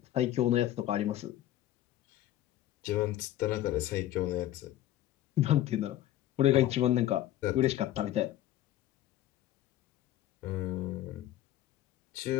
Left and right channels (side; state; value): right; quieter; 13.4 dB